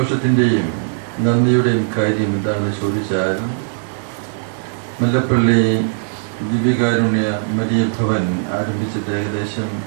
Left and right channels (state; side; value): silent; left; digital silence